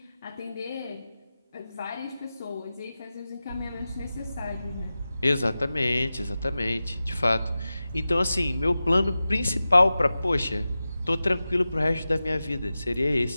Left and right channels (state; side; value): inverted; both; correlation -0.94